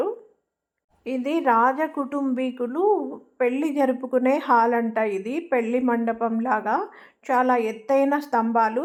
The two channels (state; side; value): identical; both; correlation 1.00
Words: ఇది రాజ కుటుంబీకులు పెళ్లి జరుపుకునే హాల్ అంట ఇది. పెళ్లి మండపం లాగా చాలా ఎత్తైన స్తంభాలు.